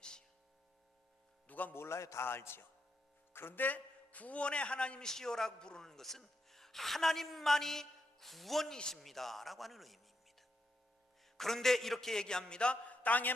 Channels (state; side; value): normal; both; correlation 0.82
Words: 누가 몰라요? 다 알지요. 그런데 구원의 하나님이시여라고 부르는 것은 하나님만이 구원이십니다 라고 하는 의미입니다. 그런데 이렇게 얘기합니다. 땅의